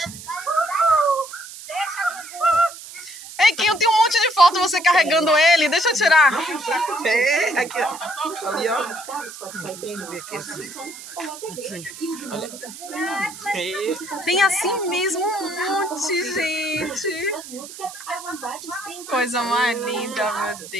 Ei, Kim, eu tenho um monte de foto você carregando ele. Deixa eu tirar. É, aqui, ó. Ali, ó. Tem assim mesmo um monte, gente. Coisa mais linda, meu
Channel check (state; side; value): noise; right; hiss, 14 dB below the sound